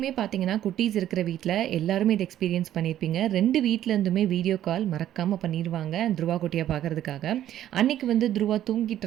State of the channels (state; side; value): quieter; left; 12.0 dB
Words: பார்த்தீங்கன்னா குட்டீஸ் இருக்கிற வீட்டில் எல்லாருமே இது எக்ஸ்பீரியன்ஸ் பண்ணியிருப்பீங்க. 2 வீட்டிலேருந்துமே வீடியோ கால் மறக்காமல் பண்ணிடுவாங்க துருவா குட்டியை பார்க்குறதுக்காக. அன்றைக்கி வந்து துருவா தூங்கிட்டு